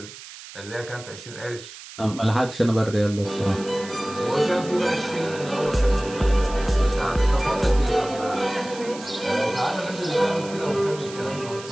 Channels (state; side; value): noise; right; hiss, 15 dB below the sound